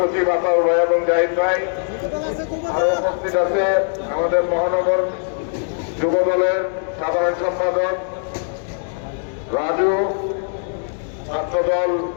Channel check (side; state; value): right; silent; 65 dB below the other